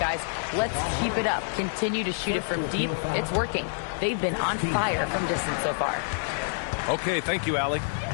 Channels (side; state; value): right; silent; 60 dB below the other